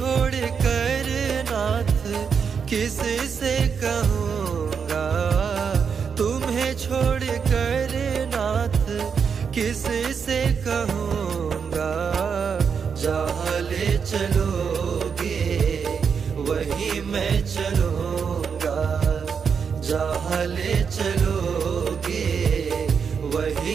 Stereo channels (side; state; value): left; quieter; 6.4 dB